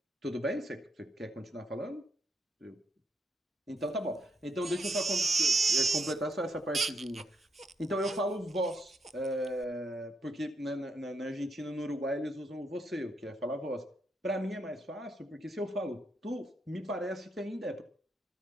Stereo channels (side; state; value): both; normal; correlation 0.76